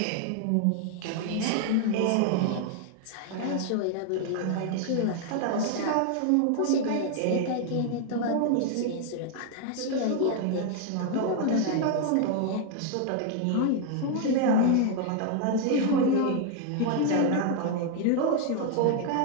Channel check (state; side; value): different; both; correlation 0.00